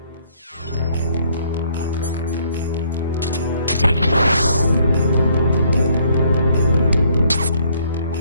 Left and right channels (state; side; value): inverted; both; correlation -0.66